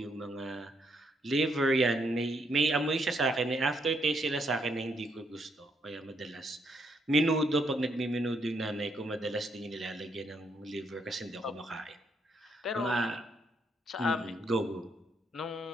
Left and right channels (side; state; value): both; normal; correlation 0.75